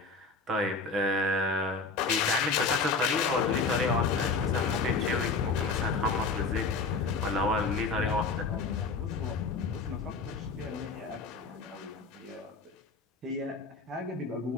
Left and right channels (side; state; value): right; quieter; 4.1 dB